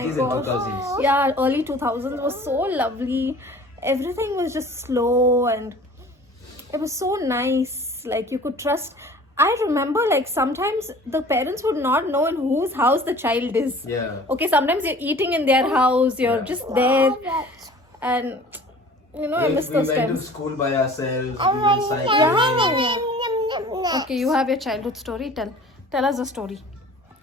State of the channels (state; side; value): normal; both; correlation 0.46